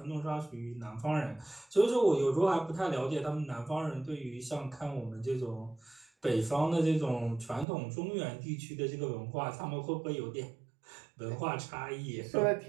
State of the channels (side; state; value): left; drops out; at 7.7 s